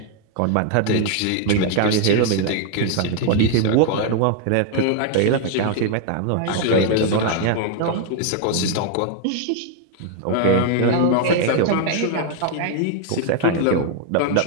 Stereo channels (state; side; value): different; both; correlation 0.00